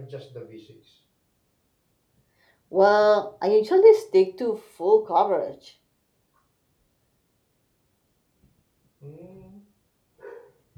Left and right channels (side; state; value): both; identical; correlation 1.00